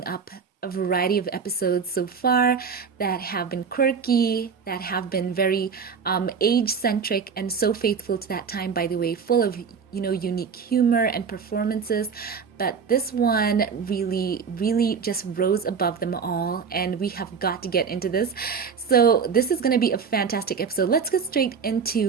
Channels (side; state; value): left; quieter; 6.0 dB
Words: up a variety of episodes so far that have been quirky, that have been very age-centric and so faithful to that time, by the way, full of, unique humor and performances. But this one really just rose above them all, and we have got to get into this. So this is going to be a fantastic episode. Let's get straight